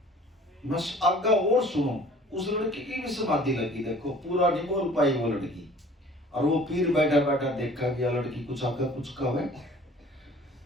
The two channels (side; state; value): both; normal; correlation 0.50